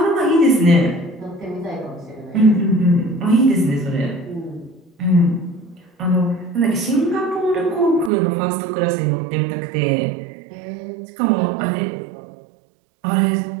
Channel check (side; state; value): left; drops out; at 8.1 s